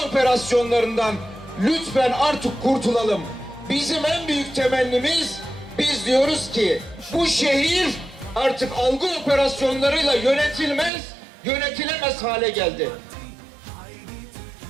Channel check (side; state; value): left; drops out; at 10.9 s